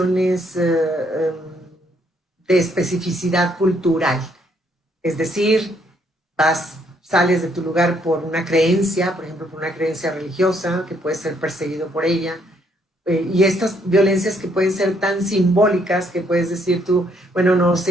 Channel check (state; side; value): normal; both; correlation 0.70